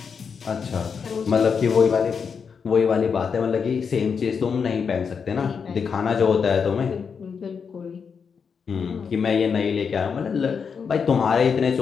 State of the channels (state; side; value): quieter; right; 6.2 dB